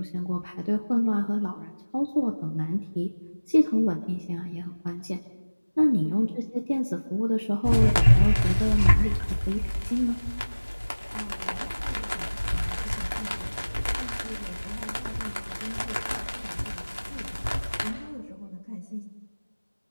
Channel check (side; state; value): both; inverted; correlation -1.00